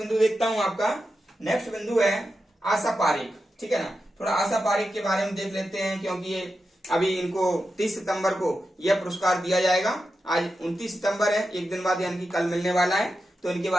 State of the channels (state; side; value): normal; both; correlation 0.89